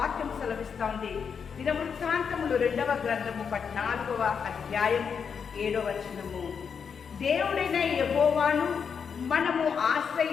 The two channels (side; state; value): right; quieter; 6.5 dB